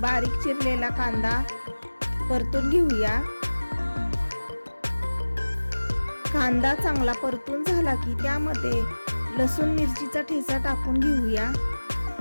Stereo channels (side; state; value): both; inverted; correlation -1.00